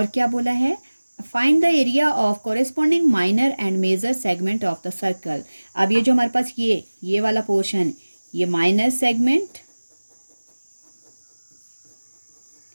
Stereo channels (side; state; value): both; inverted; correlation -1.00